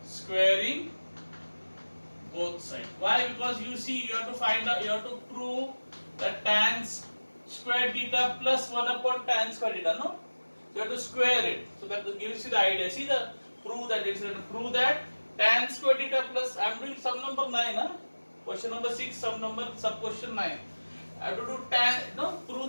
squaring both sides. Why? Because you see you have to find out, you have to prove that tan square theta plus 1 upon tan square theta, no? So you have to square it. So that gives you the idea. See the prove that it's going to prove that tan square theta plus, I am doing sum number 9, huh? Question number 6, sum number sub question 9. I have to do tan, no,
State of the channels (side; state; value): both; inverted; correlation -1.00